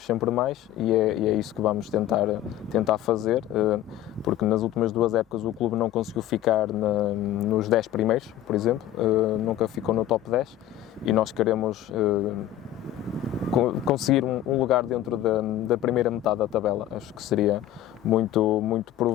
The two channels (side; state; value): right; quieter; 12.7 dB